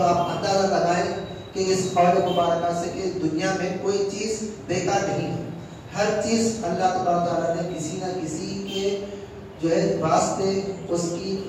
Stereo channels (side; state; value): both; identical; correlation 1.00